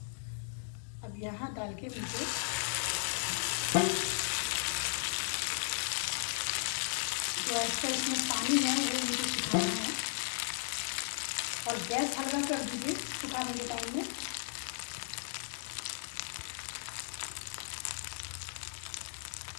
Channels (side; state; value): right; silent; digital silence